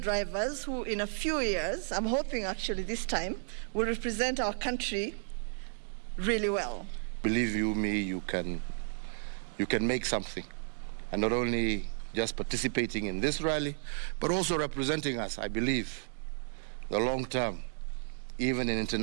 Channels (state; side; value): silent; left; digital silence